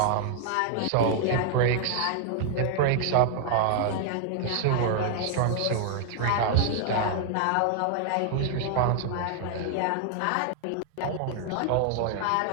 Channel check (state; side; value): different; both; correlation 0.00